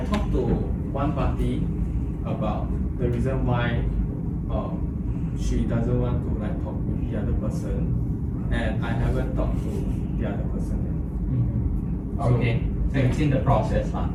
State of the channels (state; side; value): identical; both; correlation 1.00